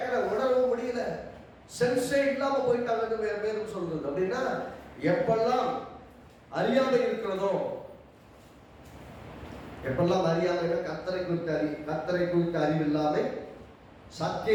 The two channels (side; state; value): both; identical; correlation 1.00